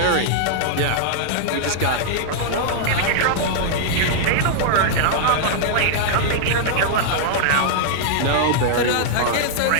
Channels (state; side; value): different; both; correlation -0.01